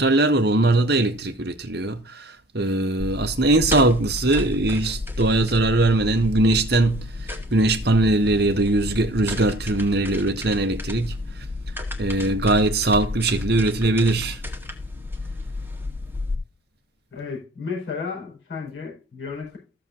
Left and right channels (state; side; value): normal; both; correlation 0.49